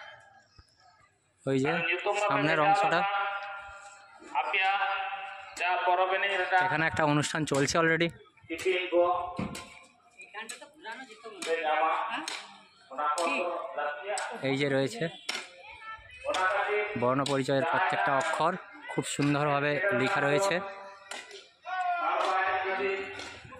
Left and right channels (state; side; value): identical; both; correlation 1.00